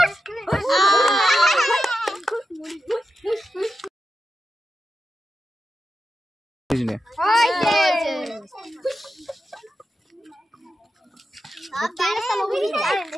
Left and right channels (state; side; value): normal; both; correlation 0.89